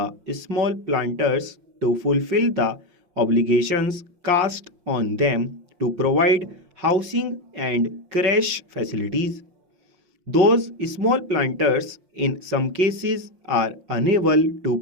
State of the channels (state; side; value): late; left; 5.6 ms